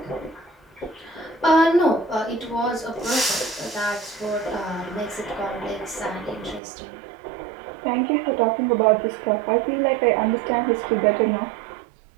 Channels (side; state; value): left; drops out; at 6.6 s